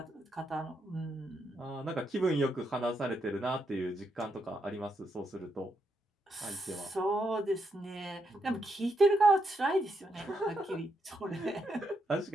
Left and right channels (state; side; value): normal; both; correlation 0.80